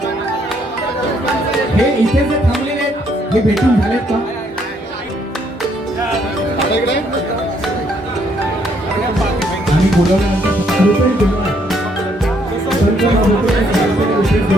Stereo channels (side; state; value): both; normal; correlation 0.69